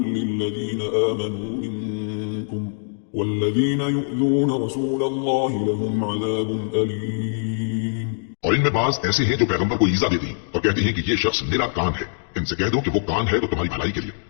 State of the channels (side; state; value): right; silent; digital silence